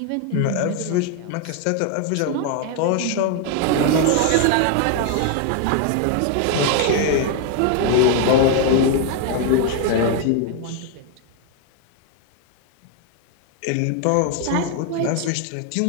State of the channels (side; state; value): both; different; correlation 0.00